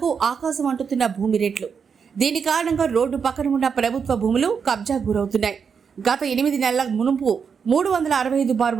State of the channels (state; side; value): quieter; left; 6.3 dB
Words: ఆకాశం అంటుతున్న భూమి రేట్లు. దీని కారణంగా రోడ్డు పక్కన ఉన్న ప్రభుత్వ భూములు కబ్జా గురవుతున్నాయి. గత 8 నెలల మునుపు